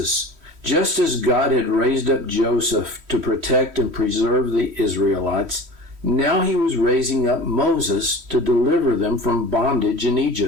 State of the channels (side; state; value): left; late; 3.1 ms